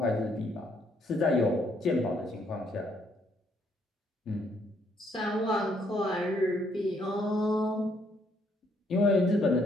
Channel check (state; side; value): normal; both; correlation 0.70